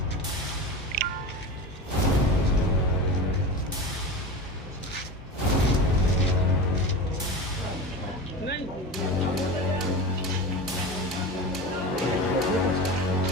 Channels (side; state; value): both; normal; correlation 0.28